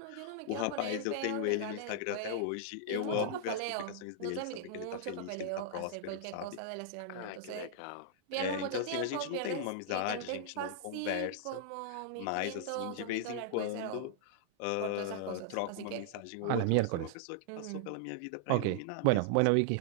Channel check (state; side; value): different; both; correlation -0.01